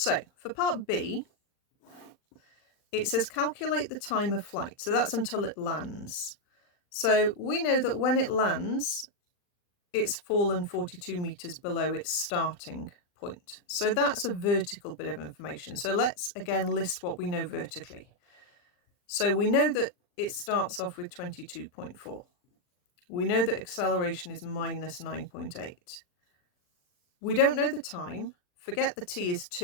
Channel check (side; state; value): right; late; 39 ms